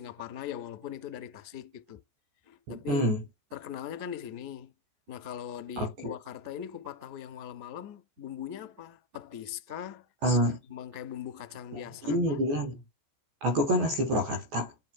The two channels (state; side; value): late; left; 14 ms